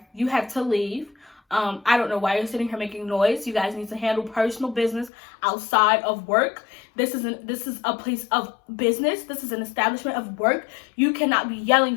you have to leave. I don't know why you're sitting here making noise. You guys need to handle personal business outside of work. This is a place of business. This is an establishment of work. You cannot be yelling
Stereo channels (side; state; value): right; drops out; at 5.1 s